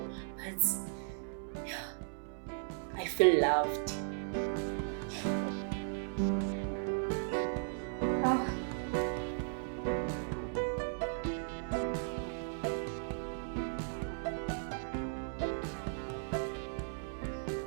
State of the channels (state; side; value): silent; left; 53 dB below the other